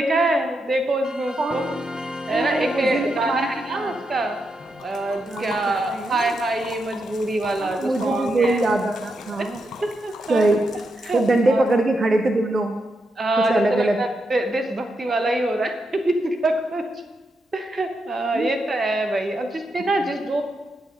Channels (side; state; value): both; normal; correlation 0.84